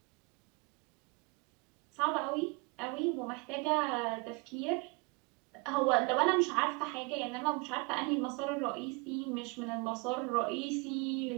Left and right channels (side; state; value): left; quieter; 29.9 dB